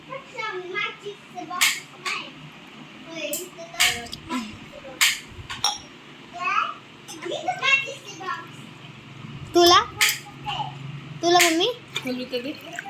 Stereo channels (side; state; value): both; identical; correlation 1.00